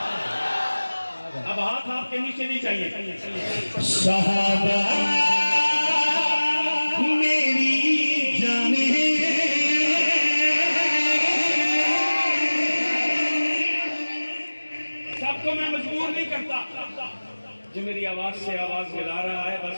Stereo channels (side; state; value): both; inverted; correlation -1.00